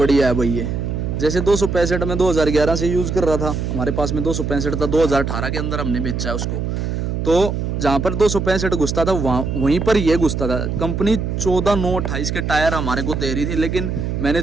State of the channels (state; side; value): noise; right; hum, 2 dB below the sound